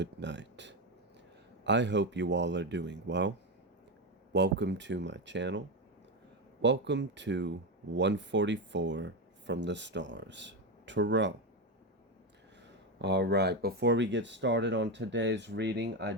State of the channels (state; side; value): normal; both; correlation 0.12